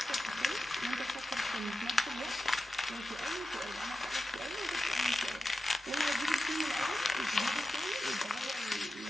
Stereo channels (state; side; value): normal; both; correlation 0.92